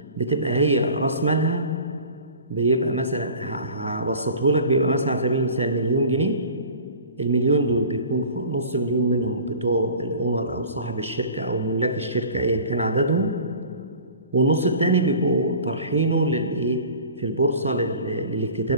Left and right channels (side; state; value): both; inverted; correlation -0.42